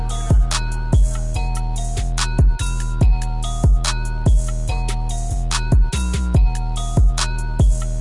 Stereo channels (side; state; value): both; identical; correlation 1.00